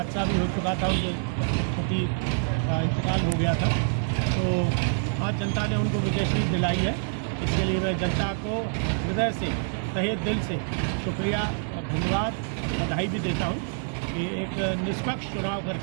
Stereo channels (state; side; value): silent; left; digital silence